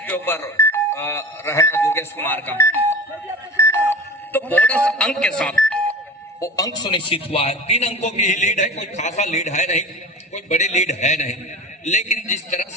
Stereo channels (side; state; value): both; normal; correlation 0.34